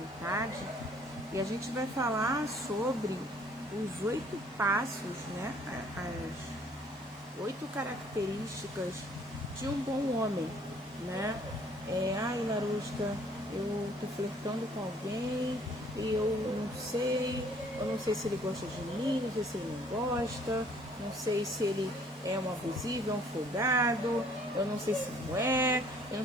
E a gente vai falar sobre os 8 passos, né? As 8 características de um bom homem, né? Ai, Larusca, eu tô flertando com alguém e eu não sei se ele gosta de mim, não sei se ele não gosta, não sei se ele é um abusivo, é um folgado, eu não sei se não é, eu não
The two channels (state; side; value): normal; both; correlation 0.59